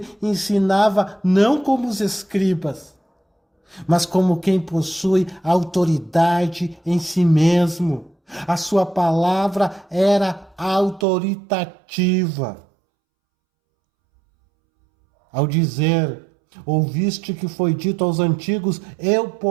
ensinava não como os escribas, mas como quem possui autoridade em si mesmo. A sua palavra era autoritativa. Ao dizer, ouviste que foi dito aos antigos, eu,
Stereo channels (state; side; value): drops out; left; at 11.1 s